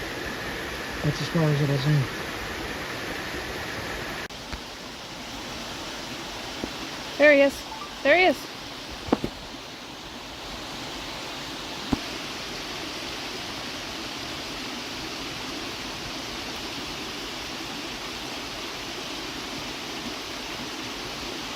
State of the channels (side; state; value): both; identical; correlation 1.00